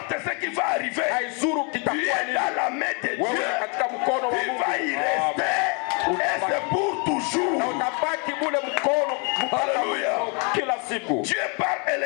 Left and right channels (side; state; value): right; quieter; 35.0 dB